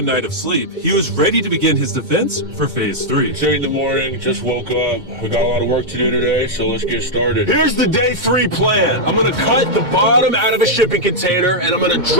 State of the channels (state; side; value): late; left; 2.2 ms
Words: night of sleep, he was ready to begin his defense for Phase 3. 8 in the morning, just woke up. We got a lot of work to do today, so let's get started. Here's the day 3 plan. I'm gonna cut the bottom out of a shipping container and I'm gonna